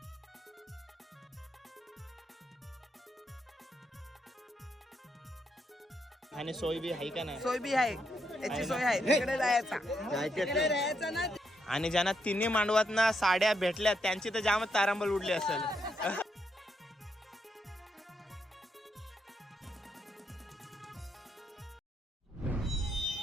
आणि सोय बी आहे का नाही? सोय बी आहे, याची सोय आहे, तिकडे जायचा ना. आणि ज्यांना तिन्ही मांडवात ना साड्या भेटल्या त्यांची तर जामच तारांबळ उडली असेल.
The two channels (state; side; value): normal; both; correlation 0.79